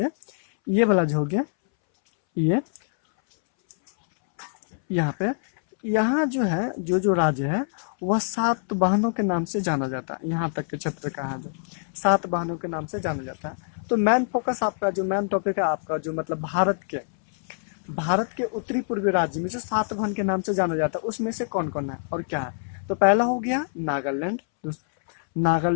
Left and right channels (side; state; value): right; silent; 62 dB below the other